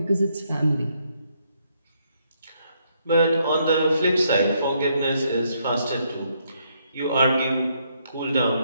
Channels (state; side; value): inverted; both; correlation -0.74